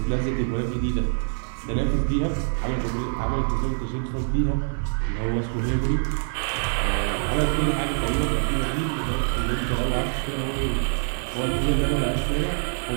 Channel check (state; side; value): silent; left; digital silence